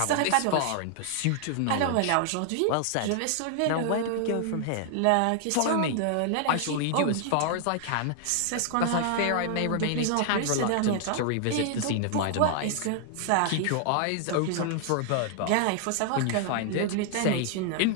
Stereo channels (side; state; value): both; different; correlation 0.00